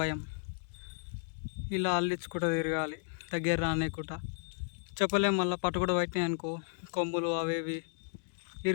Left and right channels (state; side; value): silent; right; digital silence